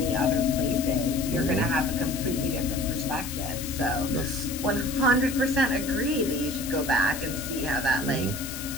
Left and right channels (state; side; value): noise; left; hiss, 9 dB below the sound